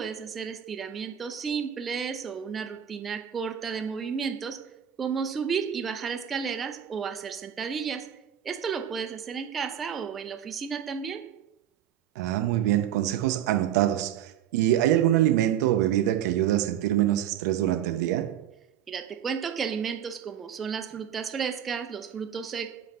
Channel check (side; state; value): left; quieter; 10.0 dB